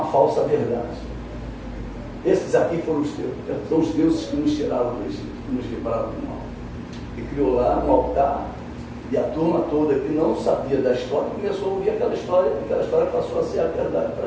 falsa verdade. Esses aqui foram são os deuses que nos tiraram do Egito, que nos livraram do mal. E criou lá um altar, e a turma toda que não sabia da história começou a ouvir aquela história passou a ser a verdade para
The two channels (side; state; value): both; identical; correlation 1.00